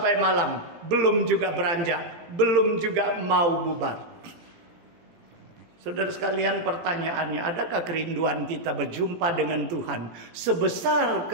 malam, belum juga beranjak, belum juga mau bubar. Saudara sekalian, pertanyaannya, adakah kerinduan kita berjumpa dengan Tuhan sebesar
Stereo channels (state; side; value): late; left; 18 ms